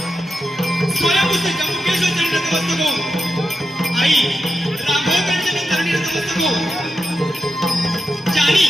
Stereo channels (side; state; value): both; normal; correlation 0.88